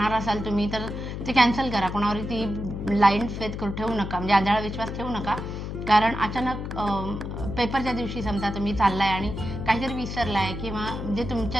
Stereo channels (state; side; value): noise; left; hum, 6 dB below the sound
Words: असाल तुम्ही, तर ते कॅन्सल करा. कोणावर ती ब्लाइंड फेथ ठेवू नका, म्हणजे आंधळा विश्वास ठेवू नका, कारण अचानक पेपरच्या दिवशी समजा तुम्ही चाललाय आणि काहीतरी विसरलाय किंवा जे